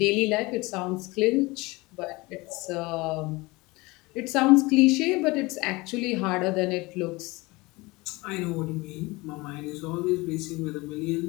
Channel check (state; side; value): quieter; right; 23.2 dB